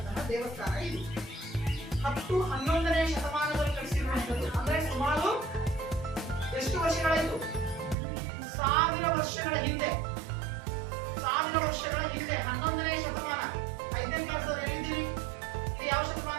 ದೇವಸ್ಥಾನ ಇದು. 10-11ನೇ ಶತಮಾನದಲ್ಲಿ ಕಟ್ಟಿಸಿರುವಂಥದ್ದು. ಅಂದ್ರೆ ಸುಮಾರು ಎಷ್ಟು ವರ್ಷಗಳಾಯ್ತು? 1000 ವರ್ಷಗಳ ಹಿಂದೆ. 1000 ವರ್ಷಗಳ ಹಿಂದೆ 11ನೇ ಶತಮಾನ. 5ನೇ ಕ್ಲಾಸ್ ಅವ್ರು ಹೇಳಿದ್ದೀರಿ. ಇದು ಯಾವ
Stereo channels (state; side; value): drops out; left; at 8.0 s